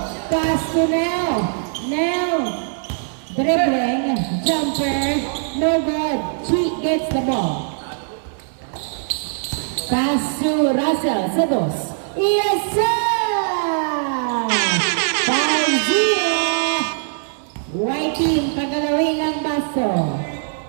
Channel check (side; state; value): left; silent; digital silence